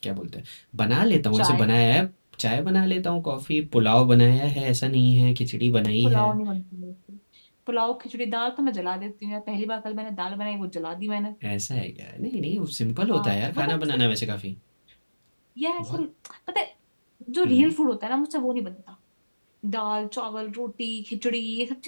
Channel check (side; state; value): both; inverted; correlation -1.00